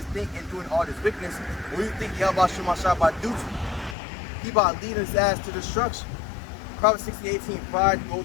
think in doing all this wickedness. What do you think YAHAWASHI about to do to him? He about to lead his ass to destruction. Proverbs 16:18, pride goes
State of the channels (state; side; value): drops out; right; at 4.0 s